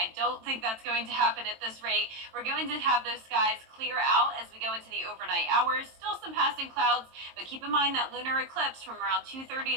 don't think that's going to happen at this rate. We're going to have those skies clear out as we go into the overnight hours. Still some passing clouds, but keep in mind that lunar eclipse from around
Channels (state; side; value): late; left; 22 ms